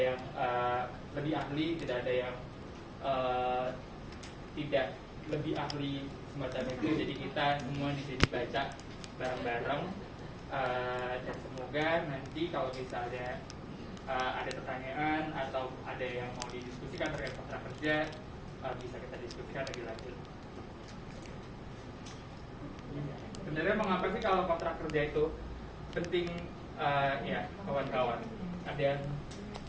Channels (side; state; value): both; identical; correlation 1.00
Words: lebih ahli, tidak ada yang tidak lebih ahli semacam itu. Jadi kita semua di sini baca bareng-bareng, dan semoga nanti kalau misalnya ada pertanyaan atau ada yang mau didiskusikan terkait kontrak kerja, bisa kita diskusikan lebih lanjut. Sebenarnya mengapa sih kalau kontrak kerja itu penting, ya kawan-kawan? Ada yang